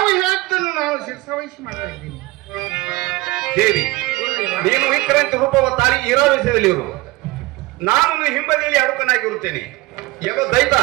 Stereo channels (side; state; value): left; quieter; 20.7 dB